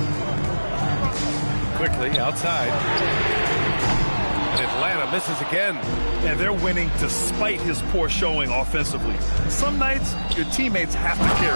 Quickly outside. And Atlanta misses again. And they're winning despite his poor showing offensively. Some nights, your teammates have to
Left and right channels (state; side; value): inverted; both; correlation -1.00